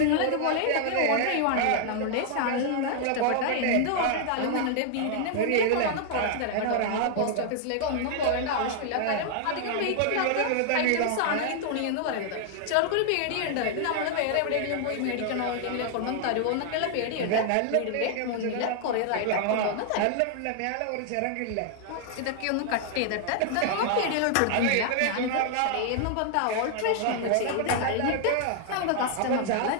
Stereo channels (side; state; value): both; different; correlation 0.00